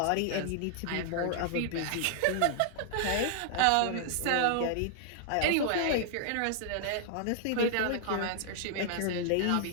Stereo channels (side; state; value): both; different; correlation -0.01